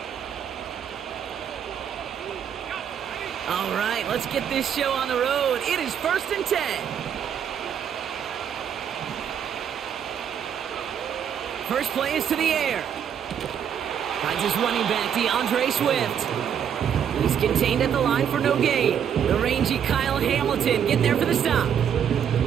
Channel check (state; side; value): quieter; left; 8.5 dB